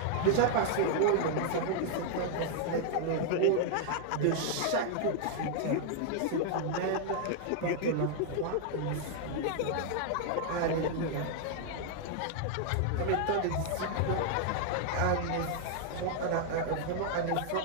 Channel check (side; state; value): both; different; correlation 0.00